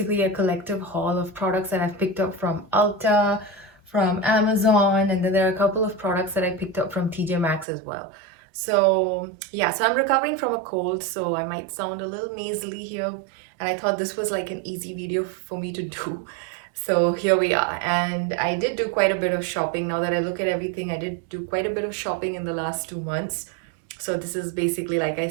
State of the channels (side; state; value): left; drops out; at 7.7 s